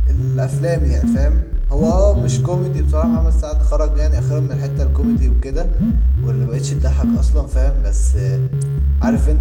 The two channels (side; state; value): both; identical; correlation 1.00